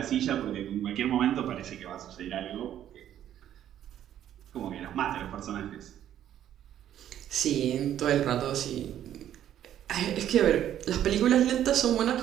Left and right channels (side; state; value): left; quieter; 11.1 dB